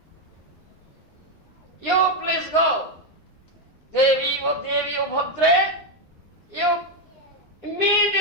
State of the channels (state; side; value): late; right; 9.6 ms